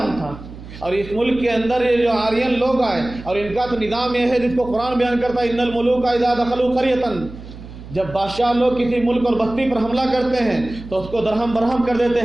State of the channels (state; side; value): noise; right; hum, 15 dB below the sound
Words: تھا، اور اس ملک کے اندر یہ جو آرین لوگ آئے، اور ان کا تو نظام یہ ہے جس کو قرآن بیان کرتا ہے، ان الملوک اذا دخلوا قریۃ، جب بادشاہ لوگ کسی ملک اور بستی پر حملہ کرتے ہیں تو اس کو درہم برہم کر دیتے